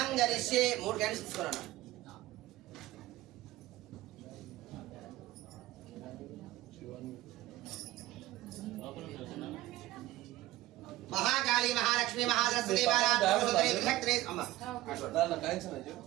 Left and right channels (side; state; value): left; quieter; 16.9 dB